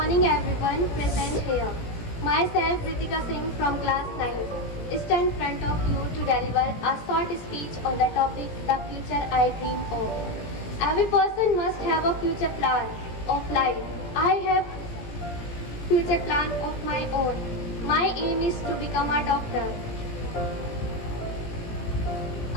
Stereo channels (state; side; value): late; right; 17 ms